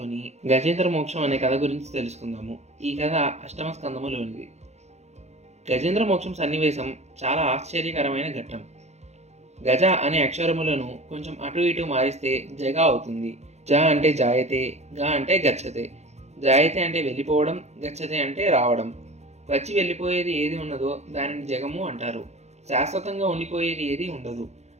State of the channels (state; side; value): late; left; 0.32 ms